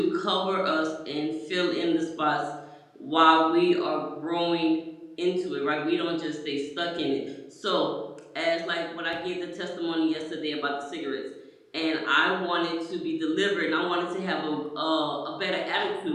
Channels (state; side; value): identical; both; correlation 1.00